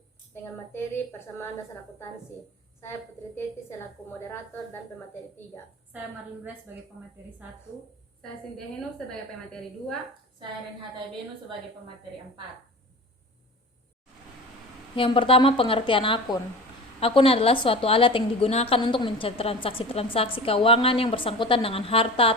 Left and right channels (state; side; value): normal; both; correlation 0.35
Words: dengan materi persamaan dasar akuntansi. Saya Putri Teti selaku moderator dan pemateri 3. Saya Marlin Grace sebagai pemateri 1. Saya Cynthia Henu sebagai pemateri 2. Saya Renhata Benu sebagai pemateri 4. Yang pertama, pengertian akun. Akun adalah suatu alat yang digunakan untuk mencatat transaksi-transaksi keuangan yang bersangkutan dengan